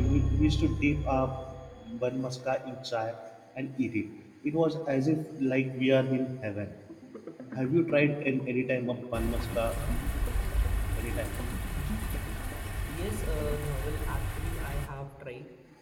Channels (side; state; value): both; identical; correlation 1.00